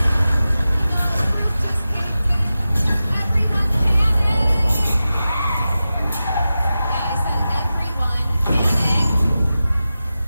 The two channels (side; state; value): both; inverted; correlation -0.94